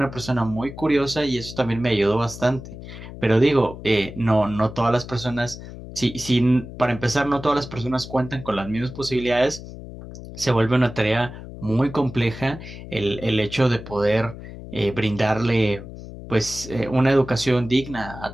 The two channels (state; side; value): noise; left; hum, 13 dB below the sound